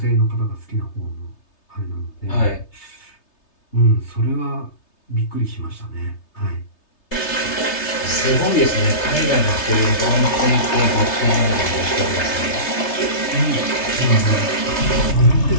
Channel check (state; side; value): late; right; 3.3 ms